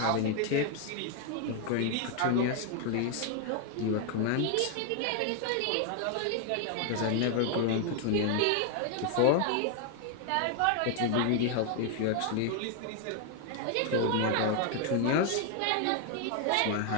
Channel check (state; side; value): different; both; correlation 0.00